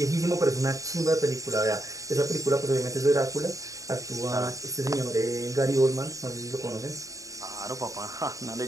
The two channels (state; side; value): late; left; 0.16 ms